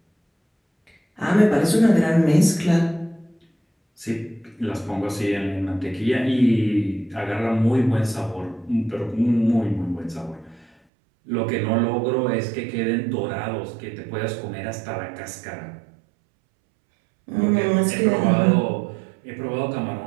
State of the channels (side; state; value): left; drops out; at 10.7 s